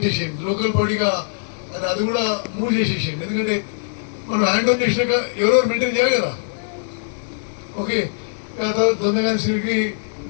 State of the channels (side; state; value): right; silent; 65 dB below the other